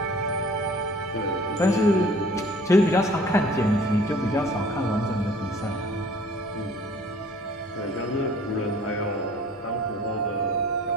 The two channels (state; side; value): normal; both; correlation 0.51